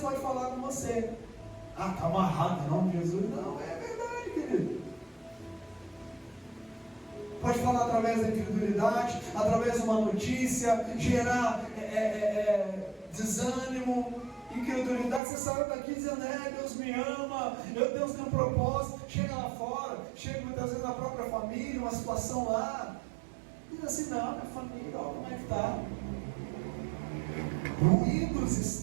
falar com você: ah, está amarrado em nome de Jesus. Não, é verdade, querido. Pode falar através da incredulidade, através de uma notícia, gerar desânimo, incredulidade. Você saiu daqui dizendo: Deus me ama, Deus tem um propósito. Chega lá fora, chega muitas vezes na própria família, uma situação lá, diz assim: não, minha família, olha como é que está. Ruídos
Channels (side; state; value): left; drops out; at 15.2 s